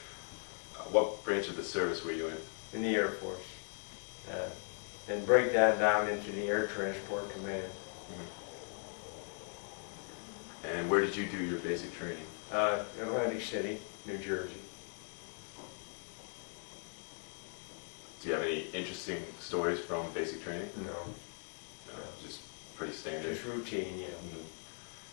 What branch of the service were you in? In the Air Force, and break that down into the Air Transport Command. And where did you do your basic training? Atlantic City, New Jersey. Do you have any interesting stories from basic training? No. No, just pretty standard. Just routine, yeah.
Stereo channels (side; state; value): right; silent; 52 dB below the other